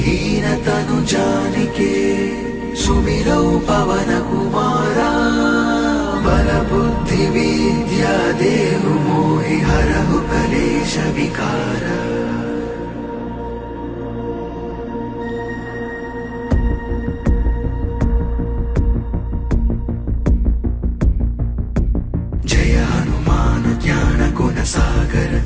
तनु जानिके सुमिरौ पवन कुमारा बल बुद्धि विद्या देहु मोहि हरहु कलेश विकारा जय हनुमान ज्ञान गुण सागर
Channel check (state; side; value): identical; both; correlation 1.00